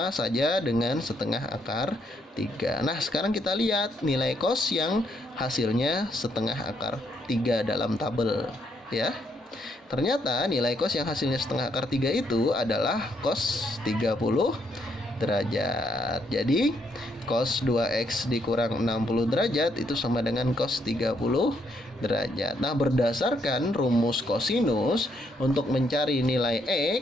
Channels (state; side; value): normal; both; correlation 0.74